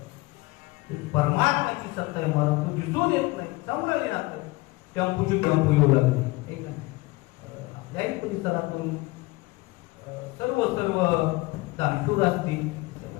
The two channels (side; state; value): right; quieter; 22.0 dB